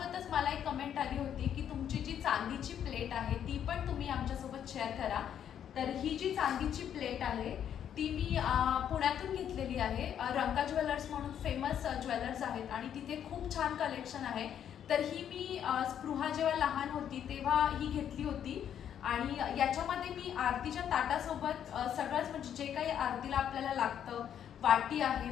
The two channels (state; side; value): quieter; right; 9.4 dB